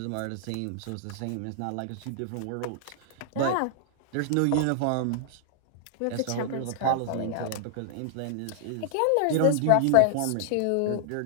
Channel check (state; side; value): different; both; correlation -0.01